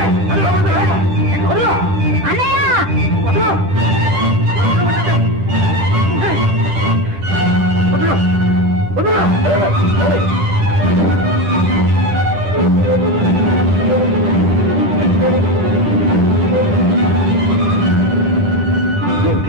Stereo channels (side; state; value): left; late; 10 ms